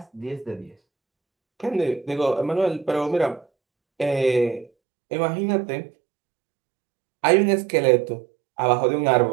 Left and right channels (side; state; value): left; drops out; at 4.7 s